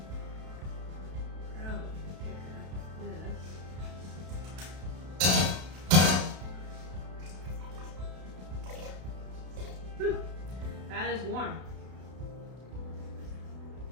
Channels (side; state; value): left; late; 32 ms